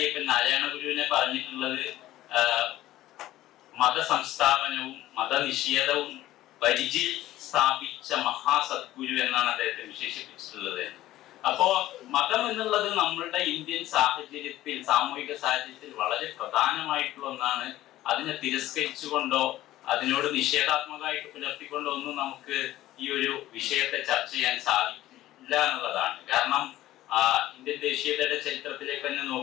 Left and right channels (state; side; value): quieter; right; 15.0 dB